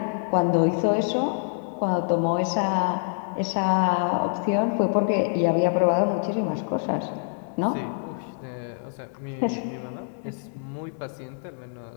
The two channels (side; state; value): right; silent; digital silence